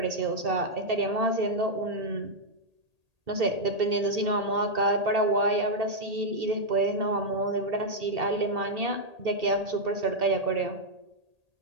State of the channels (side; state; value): left; late; 1.8 ms